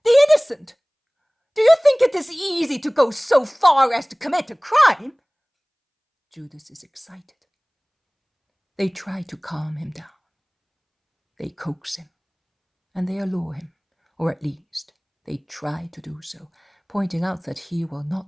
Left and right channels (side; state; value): both; identical; correlation 1.00